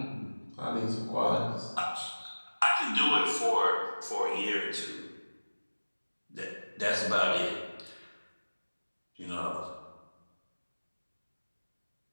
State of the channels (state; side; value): inverted; both; correlation -1.00